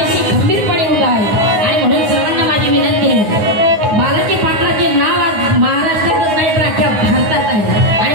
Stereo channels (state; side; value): late; left; 9.6 ms